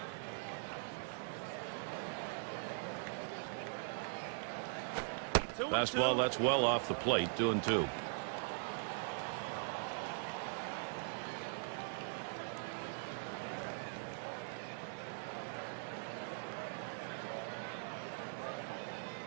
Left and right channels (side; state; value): left; silent; digital silence